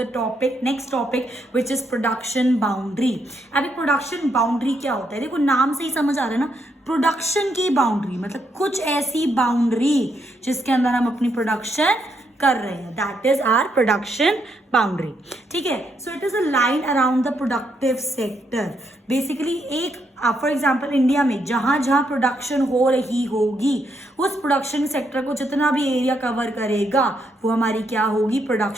the topic, next topic which is production boundary. अभी प्रोडक्शन बाउंड्री क्या होता है? देखो नाम से ही समझ आ रहा है ना, प्रोडक्शन की बाउंड्री मतलब कुछ ऐसी बाउंड्री जिसके अंदर हम अपनी प्रोडक्शन कर रहे हैं, that is our production boundary. ठीक है. So it is a line around the productive sector. Basically एक फॉर एग्जाम्पल इंडिया में जहां जहां प्रोडक्शन हो रही होगी उस प्रोडक्शन सेक्टर को जितना भी एरिया कवर करेगा वो हमारी क्या होगी?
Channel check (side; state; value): both; normal; correlation 0.77